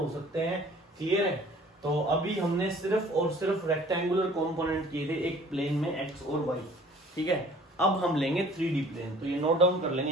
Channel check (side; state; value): both; normal; correlation 0.51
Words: सकते हैं। क्लियर है? तो अभी हमने सिर्फ और सिर्फ रेक्टेंगुलर कंपोनेंट किए थे एक प्लेन में, एक्स और वाई, ठीक है। अब हम लेंगे 3D प्लेन, तो ये नोट डाउन कर लेंगे